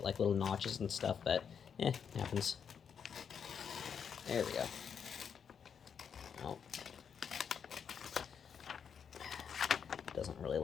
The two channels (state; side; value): quieter; right; 7.2 dB